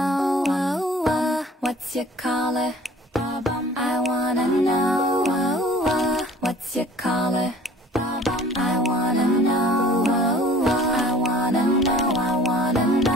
What's your color? I wanna know. What's your color? I wanna know. I wanna know. I wanna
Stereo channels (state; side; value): normal; both; correlation 0.50